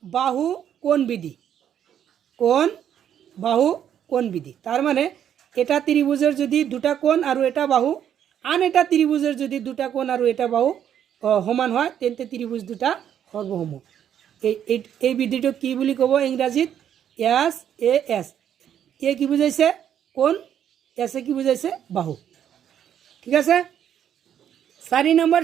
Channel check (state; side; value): quieter; left; 9.6 dB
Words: বাহু কোণ বিধি কোণ বাহু কোণ বিধি তার মানে এটা ত্রিভুজের যদি দুটা কোণ আর এটা বাহু আন এটা ত্রিভুজের যদি দুটা কোণ আর এটা বাহু সমান হয় তেন্তে ত্রিভুজ দুটা সর্বসম এই বিধিটো কি বুলি ক'ব ইংৰাজীত এছ এ এছ এ কি বুজাইছে কোণ এছে কি বুজাইছে বাহু ঠিক আছে 4 নম্বৰ